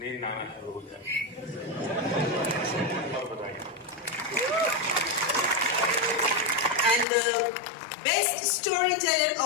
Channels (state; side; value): drops out; right; at 7.1 s